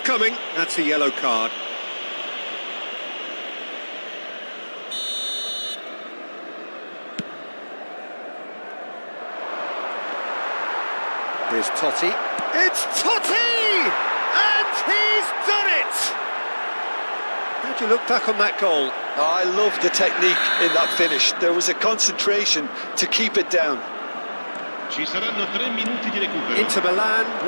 coming, that's a yellow card. Here's Totti. It's Totti! And he's done it! How'd you look back on that goal? Oh, I love the technique in that finish. There was a concentration to keep it down. Ci saranno 3 minuti di recupero. Inter Milan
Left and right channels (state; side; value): inverted; both; correlation -1.00